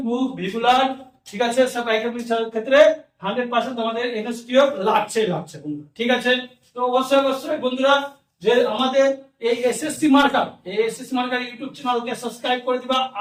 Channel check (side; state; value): both; identical; correlation 1.00